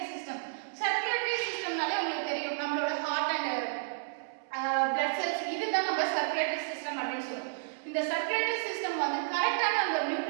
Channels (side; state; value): left; silent; digital silence